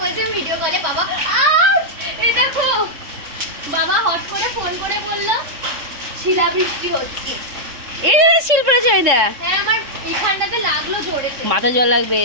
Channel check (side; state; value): left; late; 3.6 ms